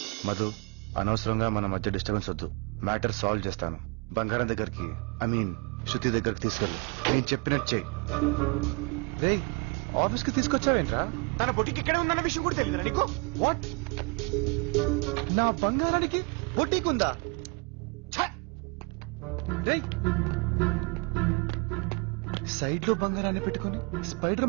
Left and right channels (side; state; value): left; quieter; 31.7 dB